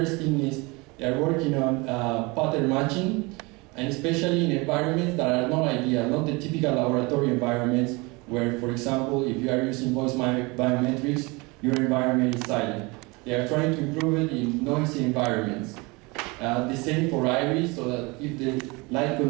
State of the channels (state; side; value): quieter; left; 26.2 dB